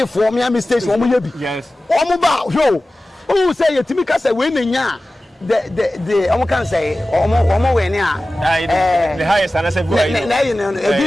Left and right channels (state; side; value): normal; both; correlation 0.96